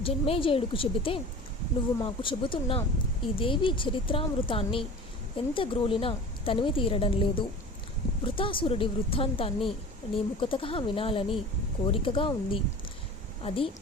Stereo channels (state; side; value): normal; both; correlation 0.38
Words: జన్మేజయుడికి చెబితే, నువ్వు మాకు చెబుతున్న ఈ దేవి చరిత్రామృతాన్ని ఎంత గ్రోలినా తనివి తీరడం లేదు. వృతాసురుడి వృత్తాంతాన్ని నీ ముఖతగా వినాలని కోరికగా ఉంది. అది